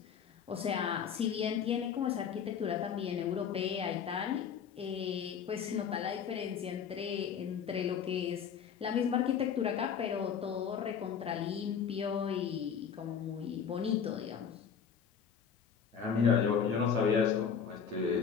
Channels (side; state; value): right; quieter; 7.3 dB